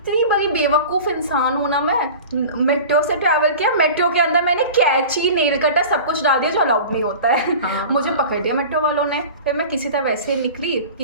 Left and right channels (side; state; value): both; inverted; correlation -0.37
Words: बड़ी बेवकूफ़ इंसान हूँ ना मैं, मेट्रो से ट्रैवल किया, मेट्रो के अंदर मैंने कैंची, नेल कटर सब कुछ डाल दिया जो अलाउड नहीं होता है। मुझे पकड़ दिया मेट्रो वालों ने। फिर मैं किसी तरह वैसे निकली,